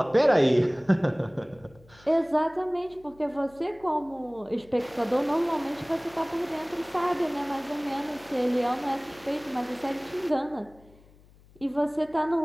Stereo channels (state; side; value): noise; left; hum, 26 dB below the sound